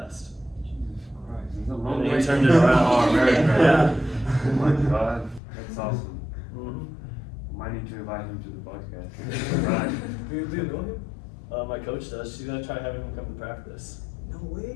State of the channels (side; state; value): right; drops out; at 5.4 s